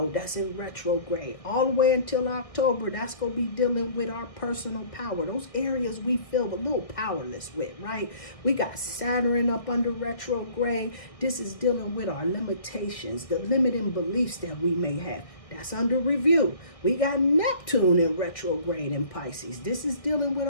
that's in retrograde all the way until October. That's going to be dealing with our personal power, those areas we feel a little powerless with, right? We got Saturn up under retrograde. This is dealing with our limitations, the limiting beliefs that we may have. That's under review. We got Neptune in retrograde in Pisces. This is dealing with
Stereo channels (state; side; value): late; right; 1.6 ms